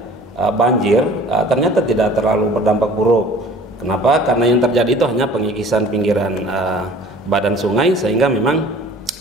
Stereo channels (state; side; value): normal; both; correlation 0.48